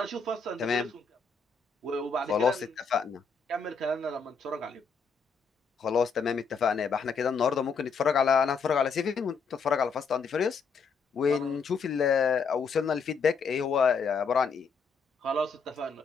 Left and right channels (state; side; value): quieter; right; 5.1 dB